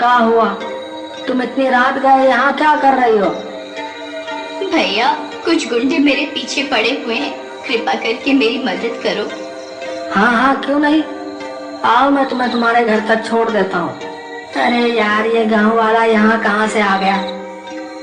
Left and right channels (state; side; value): identical; both; correlation 1.00